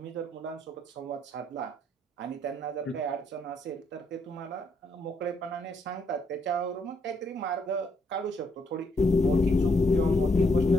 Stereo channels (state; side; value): normal; both; correlation 0.73